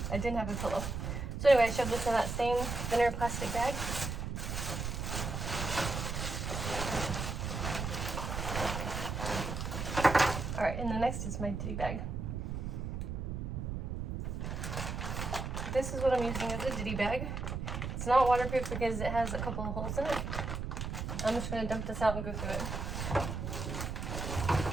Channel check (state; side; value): noise; right; rumble, 3 dB below the sound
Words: I didn't have a pillow. So anyway, I shoved this in that same thinner plastic bag. All right, and the next is my ditty bag. This is what I'm using as a ditty bag. It's not waterproof because it has a couple of holes in it. I'm just gonna dump this out and go through it.